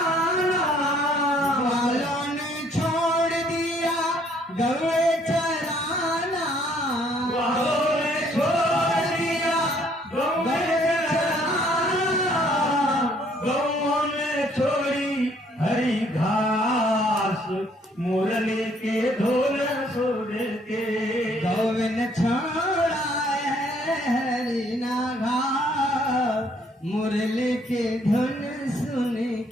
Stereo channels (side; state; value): both; normal; correlation 0.64